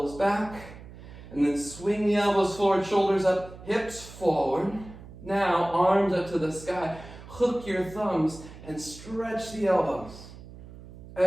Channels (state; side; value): noise; right; hum, 16 dB below the sound